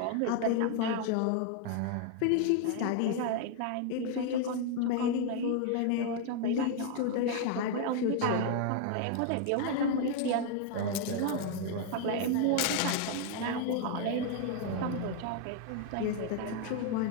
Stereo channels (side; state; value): both; different; correlation 0.00